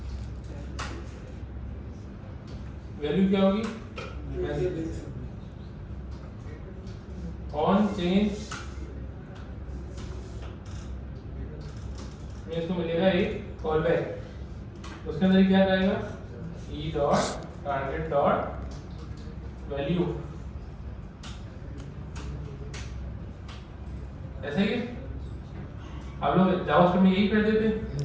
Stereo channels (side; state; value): both; identical; correlation 1.00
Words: वैल्यू क्या होगी? ऑन चेंज में इसको मिलेगा एक कॉल बैक, उसके अंदर क्या जाएगा? E dot target dot value, ऐसे ही आप लोग जावास्क्रिप्ट में यही कर देते,